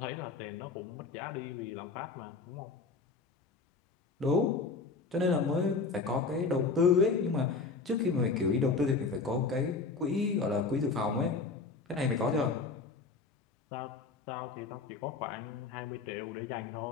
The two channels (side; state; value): right; quieter; 4.4 dB